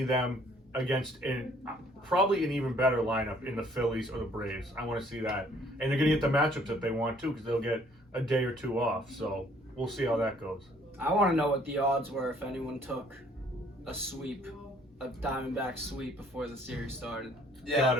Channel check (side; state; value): both; normal; correlation 0.60